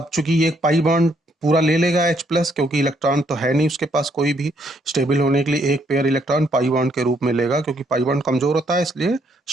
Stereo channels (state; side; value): normal; both; correlation 0.71